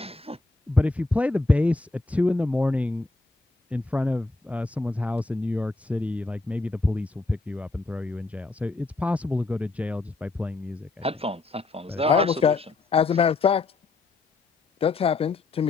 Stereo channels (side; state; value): right; quieter; 3.5 dB